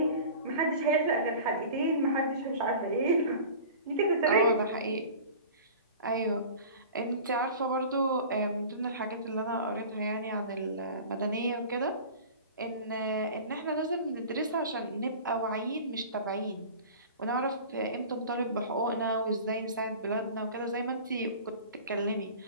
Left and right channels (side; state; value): both; inverted; correlation -0.39